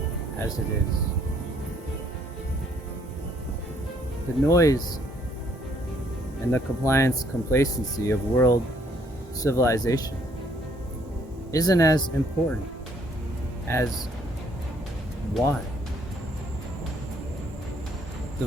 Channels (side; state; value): both; normal; correlation 0.66